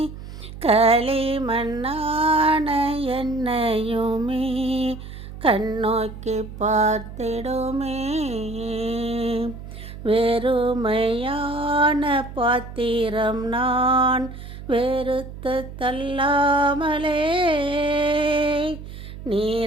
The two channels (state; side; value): noise; right; hum, 12 dB below the sound